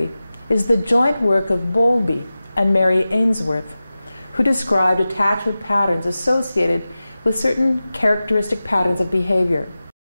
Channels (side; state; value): both; inverted; correlation -0.95